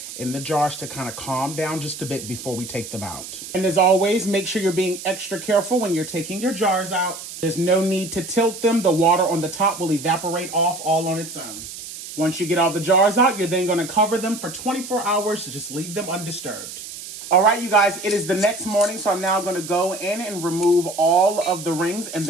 in the jars to kind of calm down just a bit before we take them out. And as always, make sure you're being extra careful when you're taking your jars out. There's no need to tilt them. The water on the top will evaporate off all on its own. Once you get all the jars out, you're then going to cover them for 24 hours to just leave them undisturbed. All right, you guys, it is the next morning, so I'm now going to go in and remove all of the rings and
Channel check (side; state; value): right; noise; hiss, 11 dB below the sound